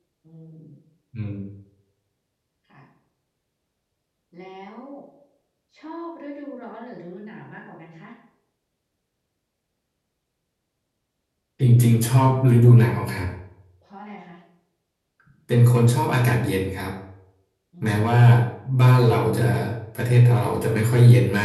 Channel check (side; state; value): both; identical; correlation 1.00